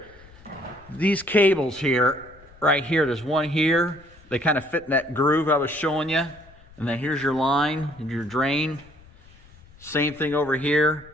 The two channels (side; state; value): left; noise; rumble, 25 dB below the sound